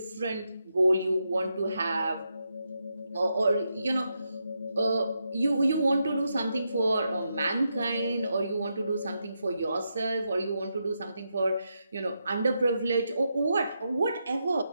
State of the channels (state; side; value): inverted; both; correlation -0.84